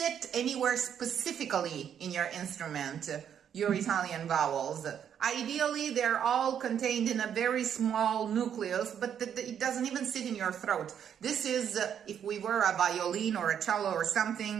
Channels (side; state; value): left; quieter; 8.7 dB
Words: anywhere specifically in your instrument, your Italian vowels. Ideally, they're all contained in a very small nucleus, but it doesn't even sit in your throat. This is, if we were a violin or a cello or